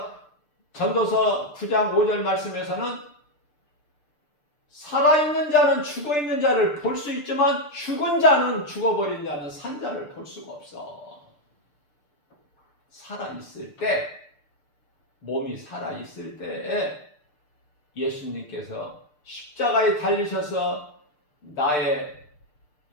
전도서 9장 5절 말씀에서는 살아있는 자는 죽어있는 자를 볼 수 있지만 죽은 자는, 죽어버린 자는 산 자를 볼 수가 없어. 살아있을 때, 몸이 살아있을 때 예수님께서 십자가에 달리셔서 나의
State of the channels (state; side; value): late; right; 6.7 ms